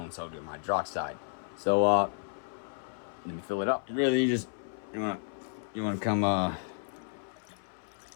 sodium hydroxide. So let me fill it up. Really, you wanna come all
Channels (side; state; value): right; silent; 56 dB below the other